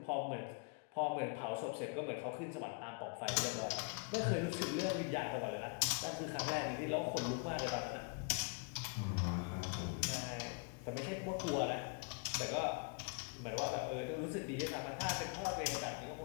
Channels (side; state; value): right; quieter; 34.7 dB